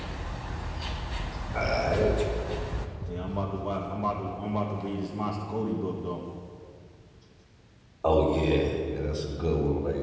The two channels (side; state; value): both; identical; correlation 1.00